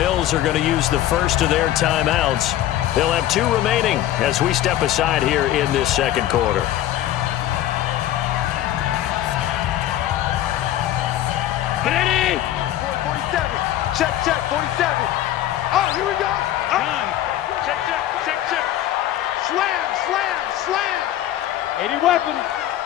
are going to use the first of their timeouts. They'll have 2 remaining as we step aside here in this second quarter. Ready? 47. Check, 47. Oh, here we go. Check. Slam. 80 weapons.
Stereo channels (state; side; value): quieter; right; 12.9 dB